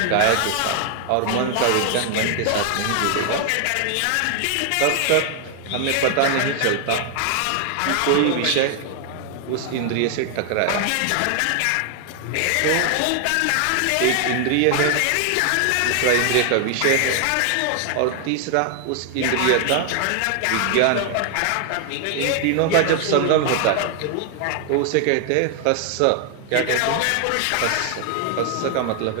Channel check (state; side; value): different; both; correlation 0.00